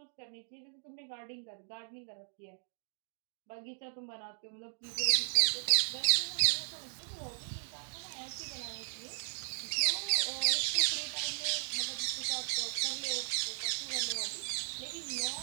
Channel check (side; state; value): left; silent; digital silence